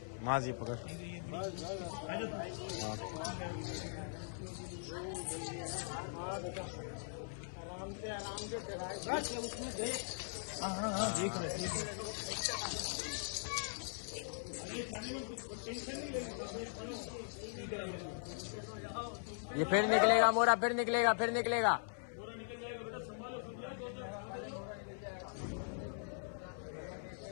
माँ जी पकड़ आराम से उसमें देख। हाँ देख रहे ये फिर निकलेगा मोरा, फिर निकलेगा, फिर निकलेगा।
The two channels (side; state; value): right; silent; 51 dB below the other